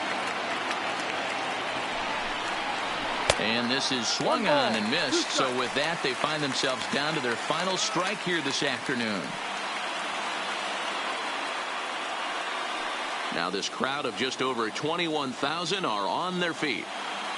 And this is swung on and missed. So with that, they find themselves down to their final strike here this afternoon. Now this crowd of just over 21,000 are on their feet.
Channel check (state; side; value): identical; both; correlation 1.00